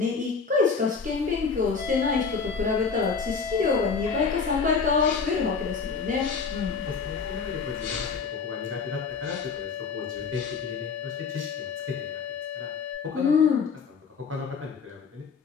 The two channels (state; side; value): quieter; right; 5.3 dB